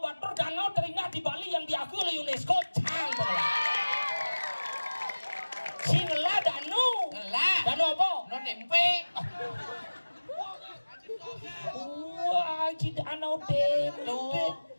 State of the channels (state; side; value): inverted; both; correlation -1.00